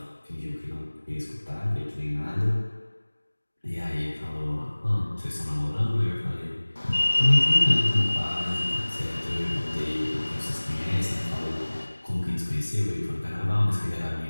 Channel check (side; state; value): both; inverted; correlation -1.00